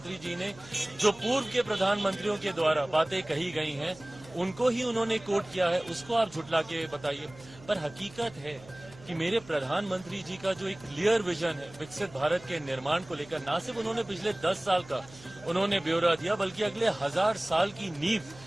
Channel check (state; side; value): noise; right; hum, 21 dB below the sound